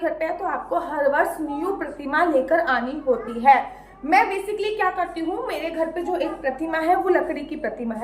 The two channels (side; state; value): both; identical; correlation 1.00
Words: पे है तो आपको हर वर्ष न्यू प्रतिमा लेकर आनी होती है। मैं बेसिकली क्या करती हूँ, मेरे घर पे जो एक प्रतिमा है वो लकड़ी की प्रतिमा